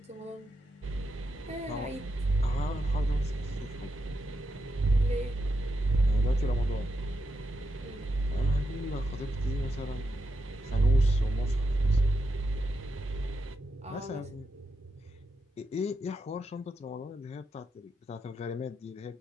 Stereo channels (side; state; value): both; normal; correlation 0.85